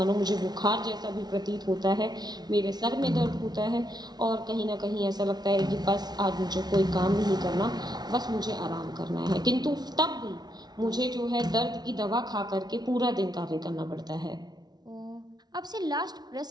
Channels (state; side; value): late; left; 0.19 ms